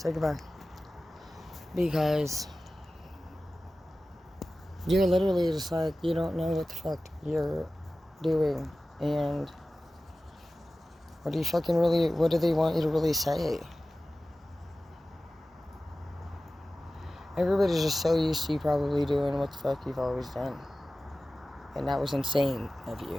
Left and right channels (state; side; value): normal; both; correlation 0.96